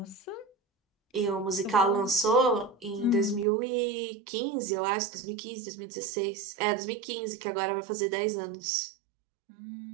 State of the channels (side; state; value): left; drops out; at 3.5 s